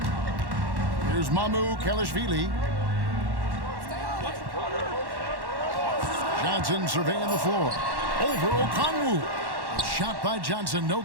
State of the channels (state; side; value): late; left; 1.1 ms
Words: Here's Mamu Kelishvili. Johnson surveying the floor. Over Okongwu. Shot by Johnson, no